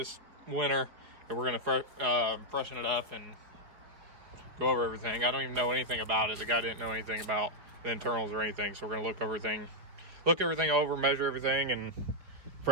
winter, and we're gonna freshen it up and go over everything. I don't even know anything about it. The guy didn't know anything about the internals or anything, so we're gonna look everything over, measure everything, and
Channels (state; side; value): late; left; 4.5 ms